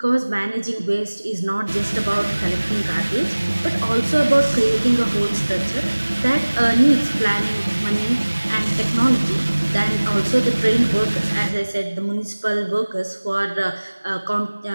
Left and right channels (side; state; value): both; inverted; correlation -1.00